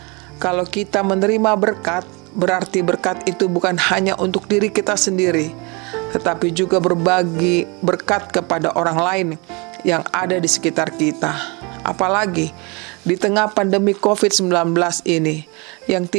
kalau kita menerima berkat, berarti berkat itu bukan hanya untuk diri kita sendiri, tetapi juga berbagi berkat kepada orang lain yang ada di sekitar kita. Apalagi di tengah pandemi COVID-19 ini, yang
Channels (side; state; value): left; quieter; 28.7 dB